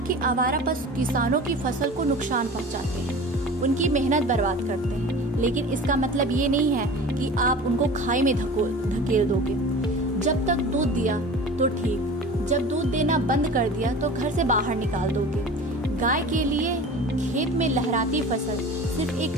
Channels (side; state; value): both; normal; correlation 0.38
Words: आवारा पशु किसानों की फसल को नुकसान पहुंचाते हैं, उनकी मेहनत बर्बाद करते हैं, लेकिन इसका मतलब ये नहीं है कि आप उनको खाई में धकेल दोगे। जब तक दूध दिया तो ठीक, जब दूध देना बंद कर दिया तो घर से बाहर निकाल दोगे। गाय के लिए खेत में लहराती फसल सिर्फ एक